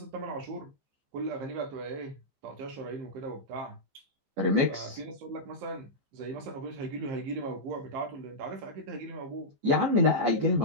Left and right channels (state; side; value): late; left; 15 ms